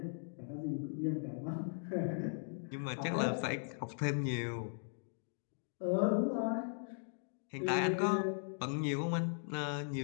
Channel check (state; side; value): silent; right; digital silence